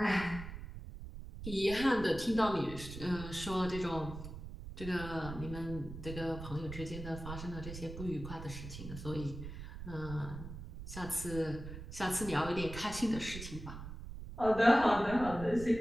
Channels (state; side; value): noise; right; rumble, 10 dB below the sound